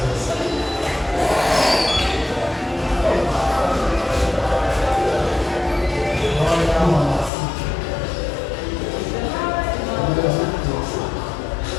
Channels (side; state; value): right; drops out; at 7.3 s